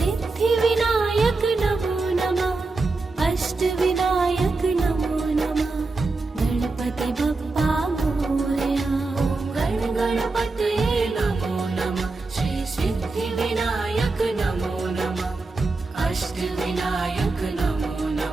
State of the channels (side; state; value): left; quieter; 3.6 dB